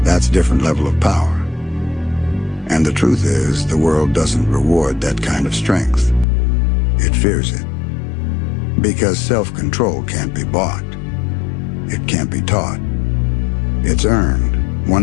that's a different level of power. And the truth is, the world doesn't reward that kind of strength. It fears it. Because self-control can't be bought. It can't be taught. It's earned,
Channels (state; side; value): drops out; right; at 6.2 s